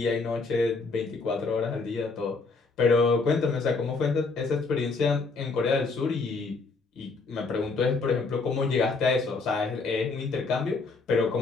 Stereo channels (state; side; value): quieter; right; 4.1 dB